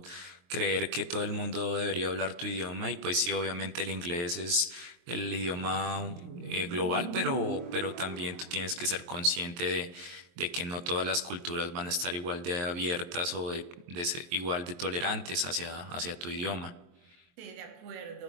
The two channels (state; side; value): late; left; 23 ms